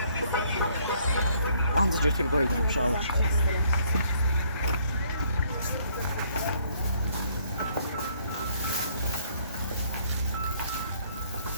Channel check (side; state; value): both; inverted; correlation -0.65